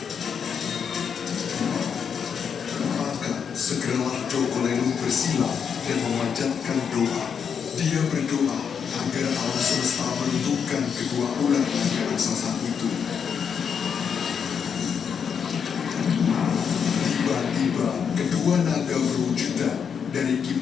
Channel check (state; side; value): quieter; right; 7.0 dB